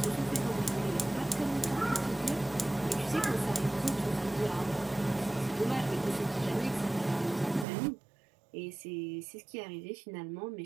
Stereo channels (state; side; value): drops out; left; at 7.7 s